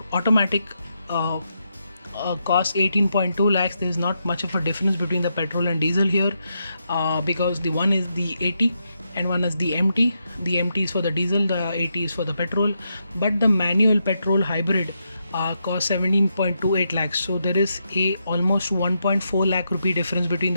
automatic cost 18.2 lakhs. There is not much of a difference between the petrol and diesel here, because the one is the AT and one is the MT. The MT is for the diesel, the AT is for the petrol, but the manual petrol hybrid costs 17.28 lakhs. So there is a almost 1.4 lakh rupee difference between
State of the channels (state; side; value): inverted; both; correlation -0.82